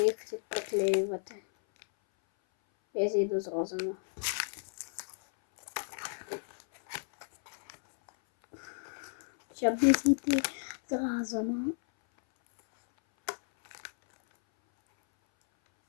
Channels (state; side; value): silent; right; 56 dB below the other